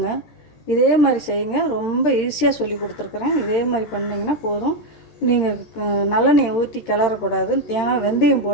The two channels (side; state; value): right; late; 13 ms